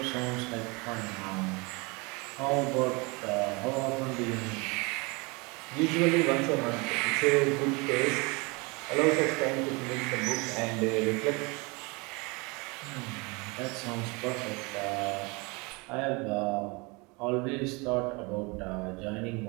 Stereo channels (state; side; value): quieter; left; 27.9 dB